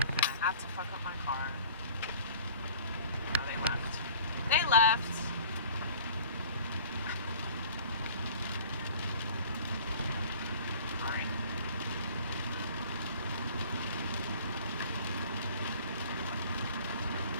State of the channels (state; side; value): inverted; both; correlation -0.47